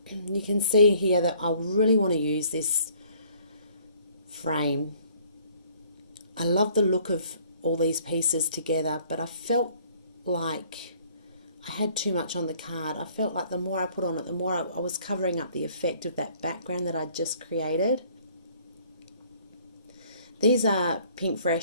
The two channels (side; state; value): both; inverted; correlation -0.58